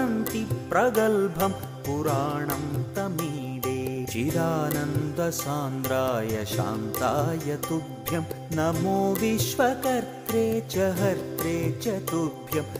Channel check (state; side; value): identical; both; correlation 1.00